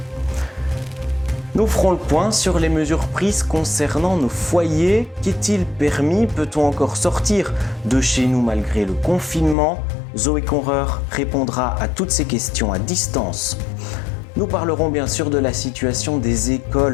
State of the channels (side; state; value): right; drops out; at 9.6 s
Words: Nous ferons le point sur les mesures prises concernant nos foyers. Qu'est-il permis? Peut-on encore sortir de chez nous malgré le confinement? Zoé Conreur répondra à toutes ces questions à distance. Nous parlerons bien sûr de la situation des